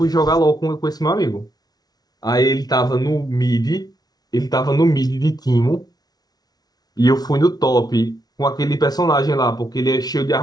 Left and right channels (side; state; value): right; late; 0.19 ms